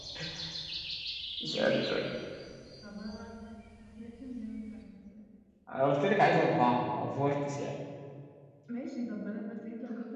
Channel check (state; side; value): identical; both; correlation 1.00